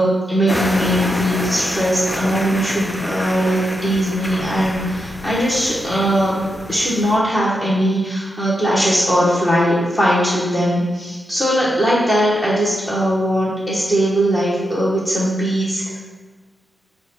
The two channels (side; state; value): both; normal; correlation 0.85